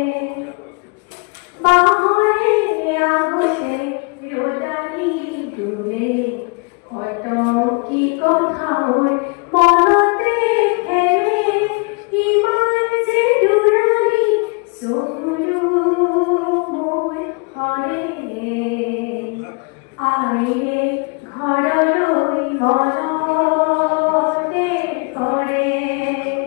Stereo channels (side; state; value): right; quieter; 32.9 dB